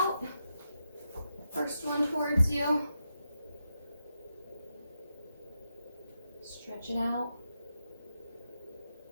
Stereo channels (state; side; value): inverted; both; correlation -0.85